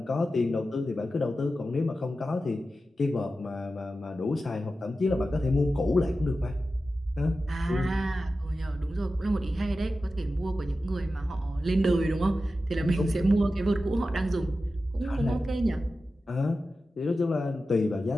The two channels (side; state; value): both; normal; correlation 0.93